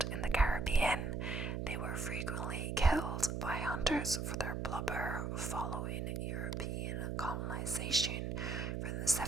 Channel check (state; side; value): noise; right; hum, 2 dB below the sound